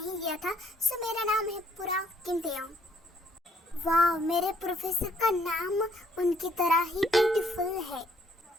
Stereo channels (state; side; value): normal; both; correlation 0.66